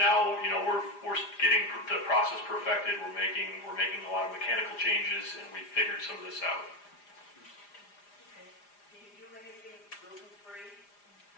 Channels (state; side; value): late; right; 4.9 ms